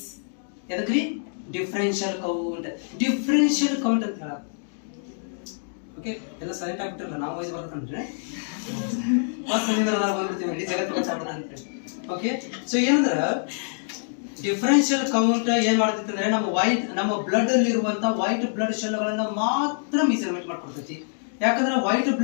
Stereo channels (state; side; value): silent; right; digital silence